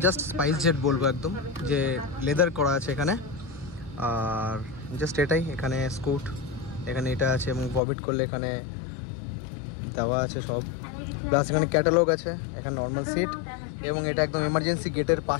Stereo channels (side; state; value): right; drops out; at 7.8 s